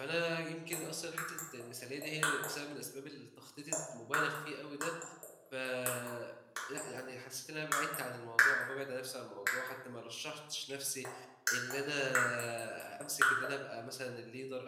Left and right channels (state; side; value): identical; both; correlation 1.00